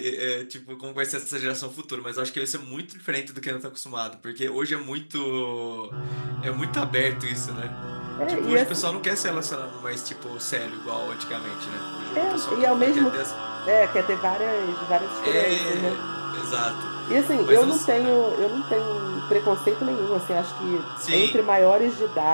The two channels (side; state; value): both; inverted; correlation -1.00